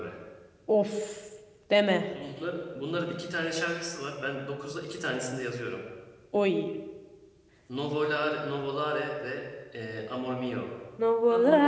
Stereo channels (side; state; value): both; identical; correlation 1.00